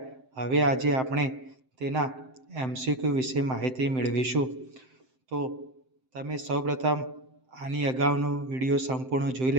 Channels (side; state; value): left; late; 7.7 ms